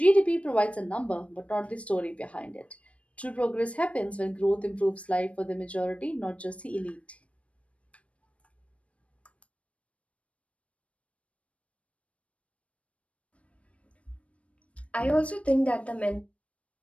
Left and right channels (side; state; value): right; late; 0.063 ms